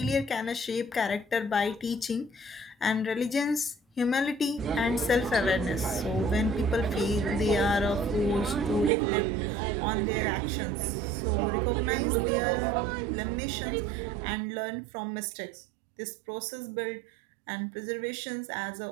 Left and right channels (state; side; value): drops out; left; at 8.9 s